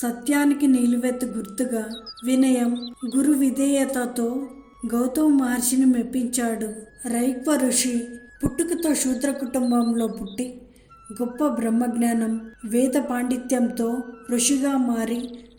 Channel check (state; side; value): identical; both; correlation 1.00